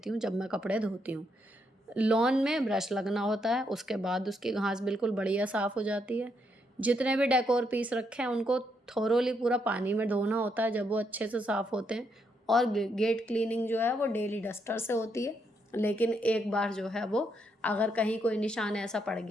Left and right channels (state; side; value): normal; both; correlation 0.77